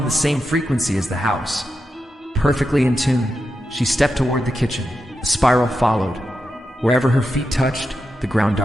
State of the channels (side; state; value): both; normal; correlation 0.88